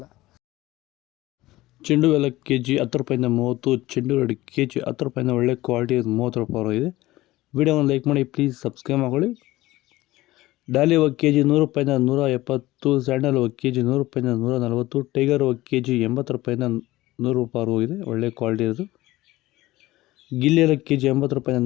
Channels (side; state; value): right; quieter; 17.7 dB